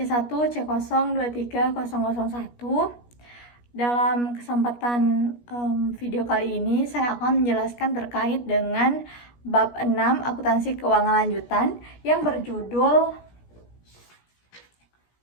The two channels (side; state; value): right; late; 17 ms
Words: Dalam kesempatan video kali ini, saya akan menjelaskan terkait dengan bab 6 akuntansi keuangan lanjutan yang berjudul